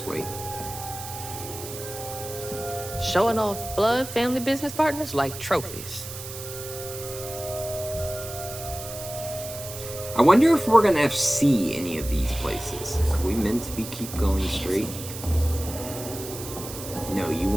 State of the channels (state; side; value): noise; right; hiss, 11 dB below the sound